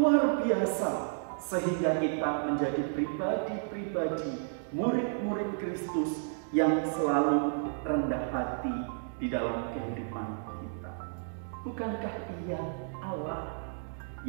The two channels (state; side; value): silent; left; digital silence